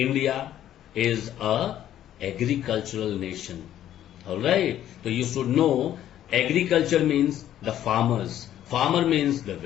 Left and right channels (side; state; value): right; quieter; 11.7 dB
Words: is a agricultural nation. Alright, so you should know agriculture means the farmers. Farmer means the